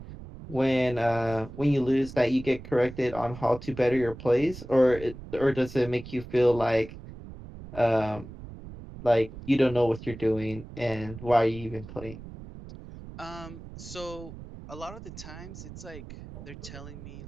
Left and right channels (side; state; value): right; noise; rumble, 14 dB below the sound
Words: when you lose that you get corrected on how to better your plays, or does it make you feel um like you don't know what you're doing and why are you even playing? So a lot of the times it's like they're telling me